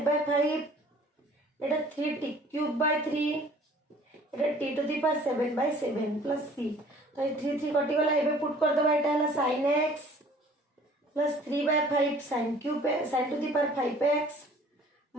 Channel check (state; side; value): normal; both; correlation 0.52